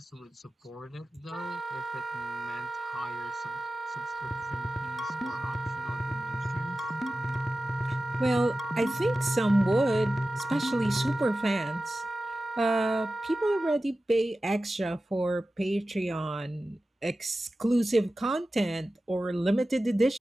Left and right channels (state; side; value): normal; both; correlation 0.94